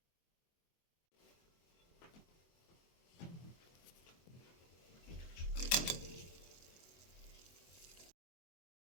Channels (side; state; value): right; late; 24 ms